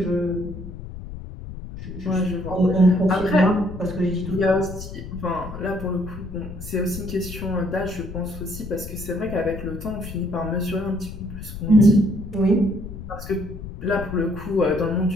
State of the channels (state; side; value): noise; left; rumble, 11 dB below the sound